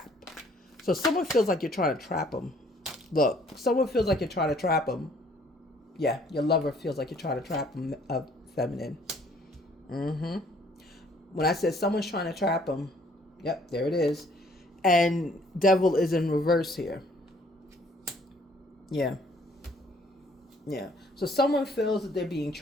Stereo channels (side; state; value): both; normal; correlation 0.61